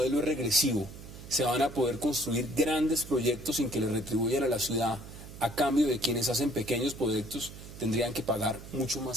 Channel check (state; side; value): noise; right; hum, 14 dB below the sound